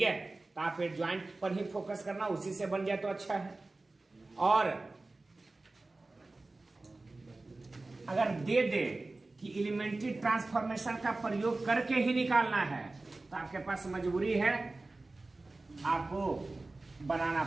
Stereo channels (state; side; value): quieter; left; 3.2 dB